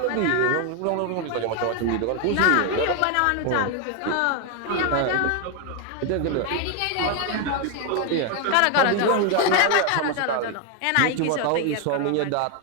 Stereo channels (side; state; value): both; different; correlation 0.01